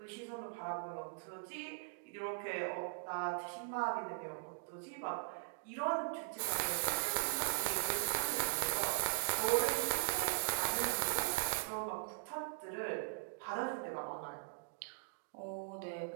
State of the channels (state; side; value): silent; left; digital silence